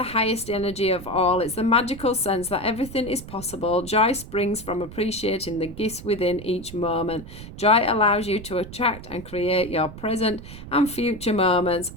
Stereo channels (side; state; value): right; noise; rumble, 13 dB below the sound